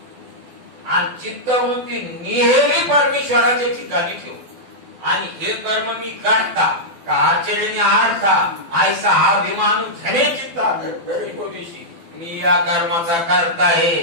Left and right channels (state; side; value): late; left; 12 ms